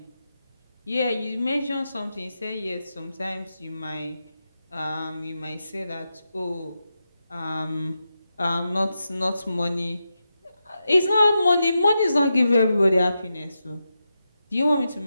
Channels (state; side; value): inverted; both; correlation -0.88